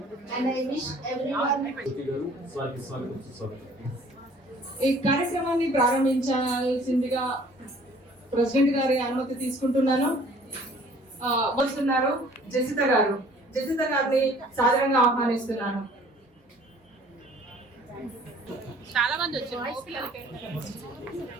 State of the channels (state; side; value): normal; both; correlation 0.54